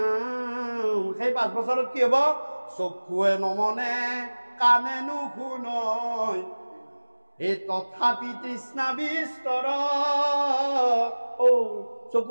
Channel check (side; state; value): both; inverted; correlation -1.00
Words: সেই 5 বছৰত কি হ'ব? চকুৱে নমনে, কাণে নুশুনয়, এই তথাপি তৃষ্ণা বিস্তৰ।